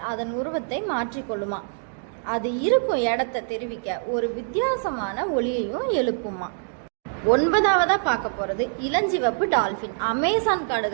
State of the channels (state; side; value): silent; left; digital silence